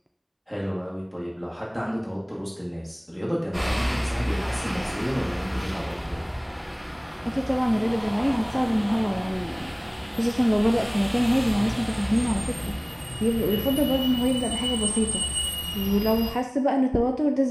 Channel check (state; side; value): identical; both; correlation 1.00